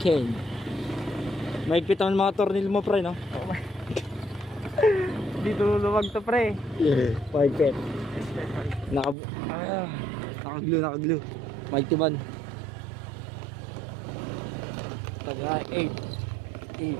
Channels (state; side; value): drops out; left; at 9.2 s